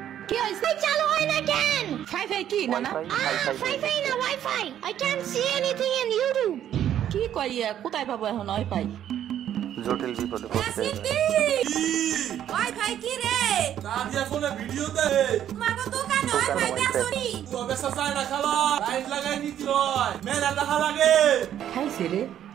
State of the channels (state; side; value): quieter; left; 10.7 dB